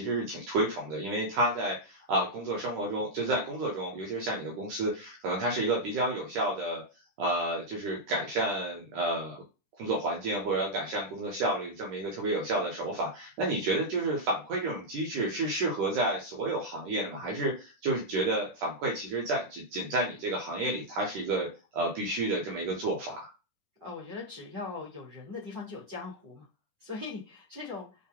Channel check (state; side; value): late; left; 10 ms